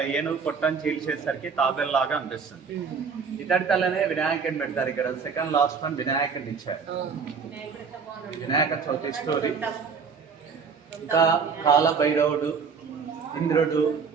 ఏనుగు పొట్టను చీల్చేసరికి తాబెల్లాగా అనిపిస్తుంది. ఇతడి తల్లనే వినాయకుని పెడతారు. ఇక్కడ సెకండ్ లాస్ట్ వన్ వినాయకుని ఇచ్చారు. వినాయక చవితి స్టోరీ. ఇంకా కాలభైరవుడు, ఇంద్రుడు,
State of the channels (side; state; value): left; quieter; 5.7 dB